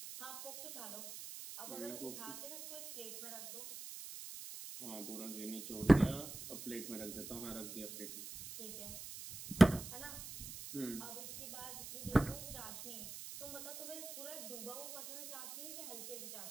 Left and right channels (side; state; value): right; noise; hiss, 10 dB below the sound